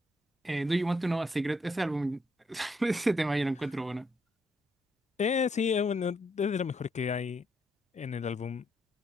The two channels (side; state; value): both; normal; correlation 0.76